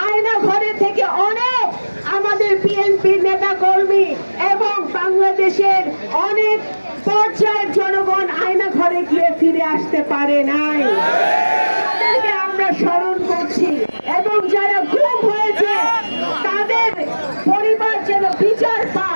আয়না ঘরে থেকে অনেক আমাদের বিএনপির নেতা কর্মী এবং বাংলাদেশের অনেক পর্যায়ের জনগণ আয়না ঘরে গিয়ে ফিরে আসতে পারে নাই। তাদেরকে আমরা স্মরণ করছি এবং যারা গুম হয়েছে তাদের পরিবার যেন বিচার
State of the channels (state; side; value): inverted; both; correlation -1.00